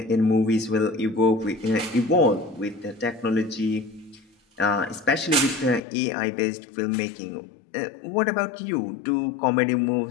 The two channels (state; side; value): drops out; right; at 5.8 s